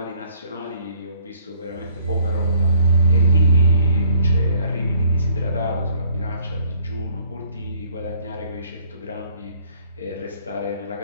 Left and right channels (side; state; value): both; inverted; correlation -0.60